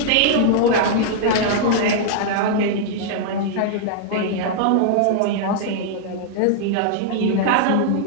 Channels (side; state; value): both; different; correlation -0.01